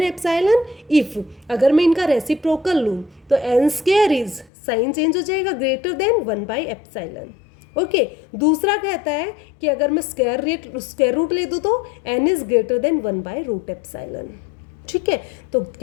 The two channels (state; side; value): drops out; right; at 4.5 s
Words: epsilon if, अगर मैं इनका रेसिप्रोकल लूँ तो n² इज, साइन चेंज हो जाएगा, ग्रेटर देन 1/एप्सिलॉन, ओके। दूसरा कहता है कि अगर मैं स्क्वायर रूट ले दूँ तो n इज ग्रेटर देन 1/√एप्सिलॉन, ठीक है, तो